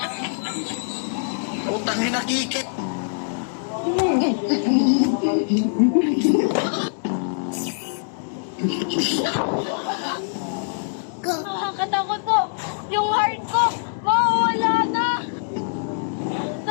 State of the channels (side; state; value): right; silent; digital silence